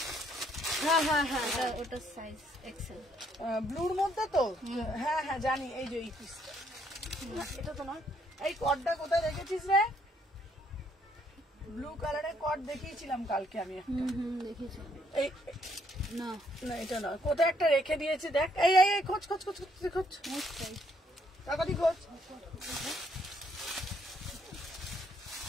হ্যাঁ ওটা সাইজ এক্সেল, ব্লুর মধ্যে তো, হ্যাঁ জানি। এই যে এই পিসটা, এটা তো নয়। এই কটটা কোথায় রেখেছিস রে? ব্লু কালারের কট দেখিয়েছিলাম কালকে আমি একটা, দেখেছি। এই না না এটা নয়, কোথায় একটা রেখে দিয়েছি দেখ। এই খোঁজ তাড়াতাড়ি খোঁজ।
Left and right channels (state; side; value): normal; both; correlation 0.69